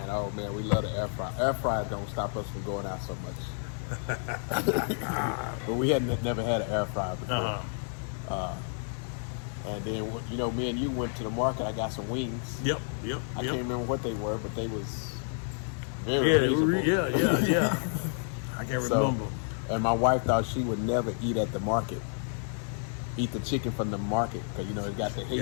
oh man, we love the air fryer. Air fryer don't stop us from going out so much. But we had never had an air fryer before. And then, you know, me and you went to the market. I got some wings. Yep. I can't remember what they were, but they was very reasonable. Yeah. I can't remember. And my wife thought she would never eat at the market. Eat the chicken from the market because, you know, it got the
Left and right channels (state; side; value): silent; right; 58 dB below the other